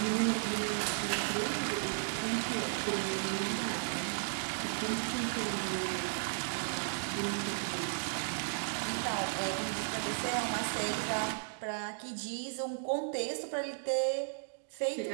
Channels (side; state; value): left; silent; digital silence